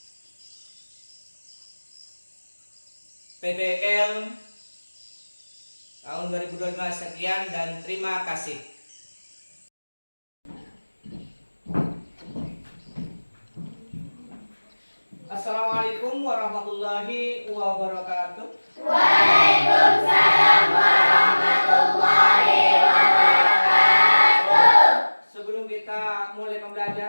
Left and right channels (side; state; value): both; inverted; correlation -1.00